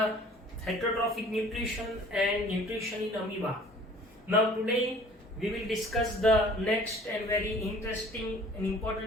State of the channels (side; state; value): both; normal; correlation 0.50